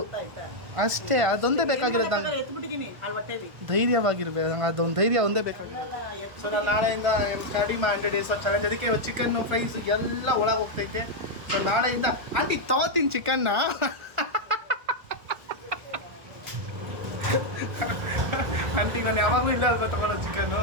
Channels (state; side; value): late; left; 1.5 ms